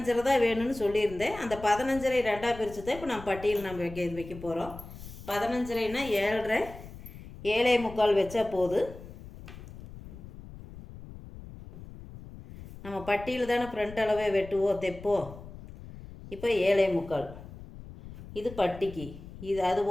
தான் வேணும்னு சொல்லியிருந்தேன். அந்த 15.5 2ஆக பிரித்து தான் இப்போ நம்ம பட்டியில் நம்ம வைக்க போகிறோம். 15.5னா 7.5 7.25 வச்சா போதும். நம்ம பட்டியில் தானே ஃப்ரண்ட் அளவே வெட்டுவோம் தைப்போம். இப்போ 7.25 இது பட்டிக்கு. இது அது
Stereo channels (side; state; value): left; noise; rumble, 15 dB below the sound